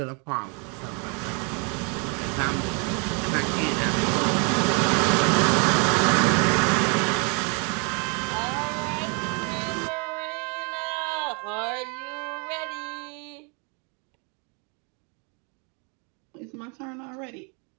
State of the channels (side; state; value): left; quieter; 35.3 dB